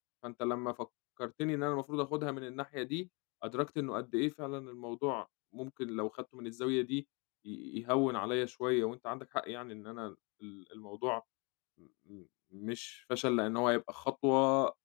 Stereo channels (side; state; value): right; quieter; 31.0 dB